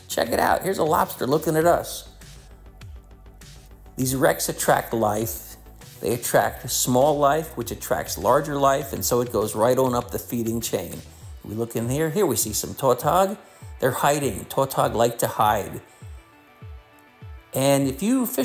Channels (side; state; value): both; identical; correlation 1.00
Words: Check it out. Here's a lobster looking at us. These wrecks attract life. They attract small life, which attracts larger life, and so it goes right on up the feeding chain. We look in here. Here we see some tautog. They're hiding. Tautog like to hide. And if you